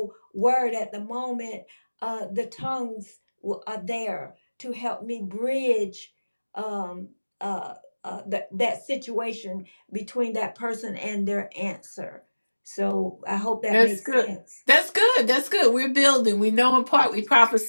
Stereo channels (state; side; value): inverted; both; correlation -1.00